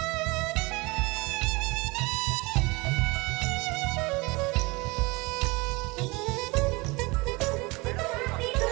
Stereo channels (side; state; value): left; quieter; 25.0 dB